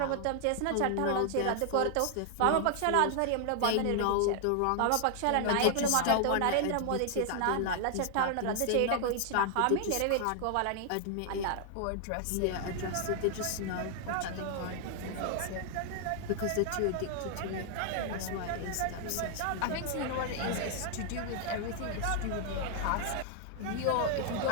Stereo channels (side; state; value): both; different; correlation 0.00